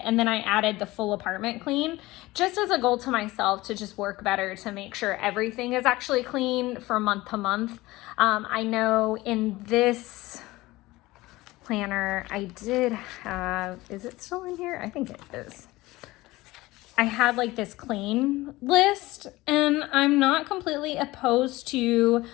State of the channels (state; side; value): quieter; right; 19.4 dB